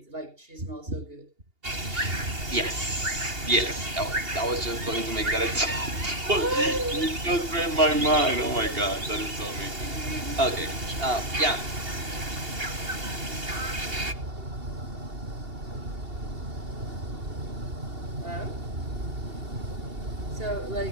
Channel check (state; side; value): late; left; 2.8 ms